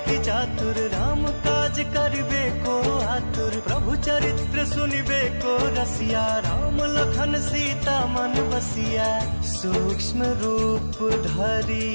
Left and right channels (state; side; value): inverted; both; correlation -1.00